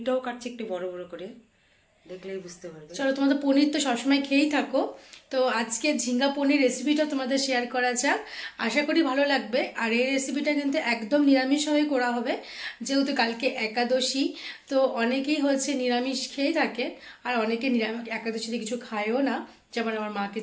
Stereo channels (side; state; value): both; identical; correlation 1.00